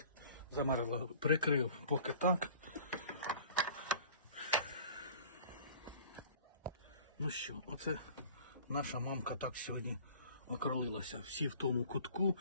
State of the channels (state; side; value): inverted; both; correlation -0.48